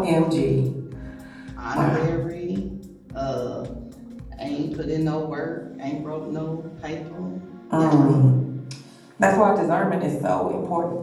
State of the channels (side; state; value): both; identical; correlation 1.00